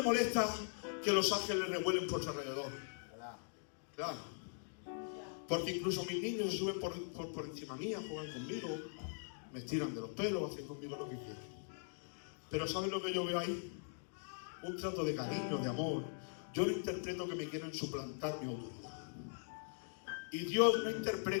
molesta que los ángeles revuelen por su alrededor? Claro. Porque incluso mis niños se suben por encima mía, juegan conmigo, me tiran de los pelos, hacen conmigo lo que quieren. Pero ¿sabes lo que yo veo ahí? Un trato de cariño, de amor. Yo no interpreto que me quieren suplantar mi autoridad. Y Dios no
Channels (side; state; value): right; silent; digital silence